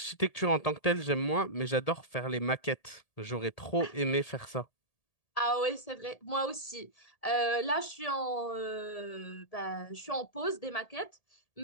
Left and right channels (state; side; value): late; right; 1.8 ms